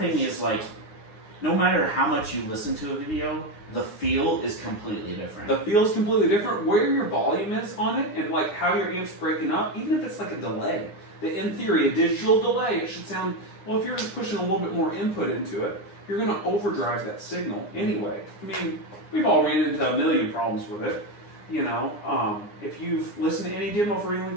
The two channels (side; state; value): right; late; 9.8 ms